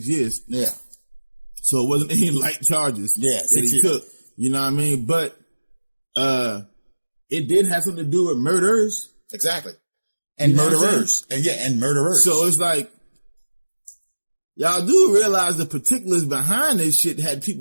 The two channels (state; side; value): inverted; both; correlation -1.00